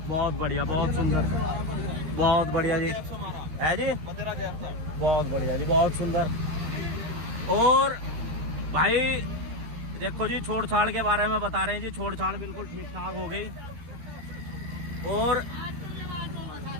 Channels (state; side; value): late; left; 13 ms